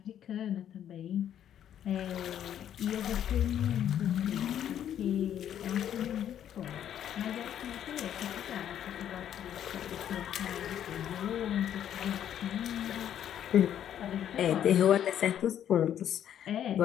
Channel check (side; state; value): right; quieter; 10.2 dB